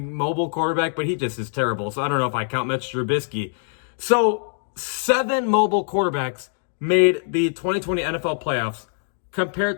quarterback, but he just is terrible. So I don't know if I count Mitch Trubisky. So 7 mobile quarterbacks made the 2020 NFL playoffs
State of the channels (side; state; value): right; silent; digital silence